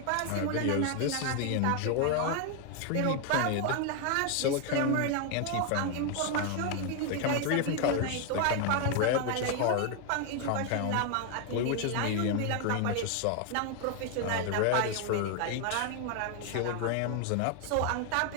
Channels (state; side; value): different; both; correlation 0.01